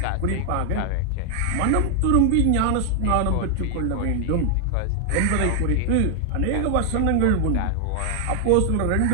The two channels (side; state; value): both; different; correlation 0.00